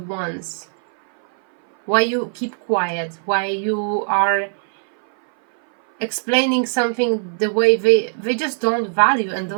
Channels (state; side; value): silent; left; 60 dB below the other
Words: once. Why you keep quiet, why you are explaining something the way they just don't value and